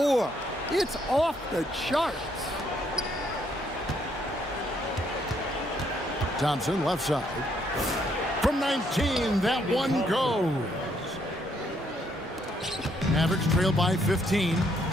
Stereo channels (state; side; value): normal; both; correlation 0.71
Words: it's off the charts. Thompson left side. From 19, that one goes. Mavericks trail by 15.